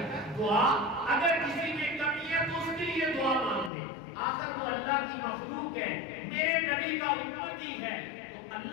دعا، اگر کسی میں کمی ہے تو اس کے لیے دعا مانگ دے. آخر وہ اللہ کی مخلوق ہے، میرے نبی کا امتی ہے، تو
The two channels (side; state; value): right; drops out; at 3.7 s